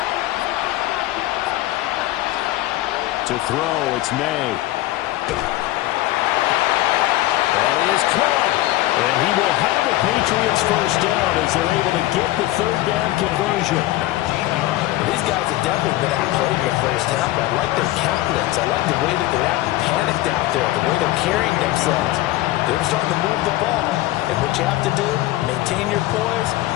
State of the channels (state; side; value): quieter; right; 16.6 dB